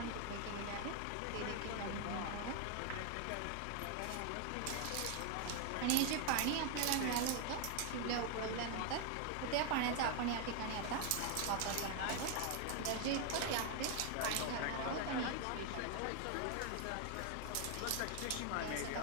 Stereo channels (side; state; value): both; different; correlation 0.01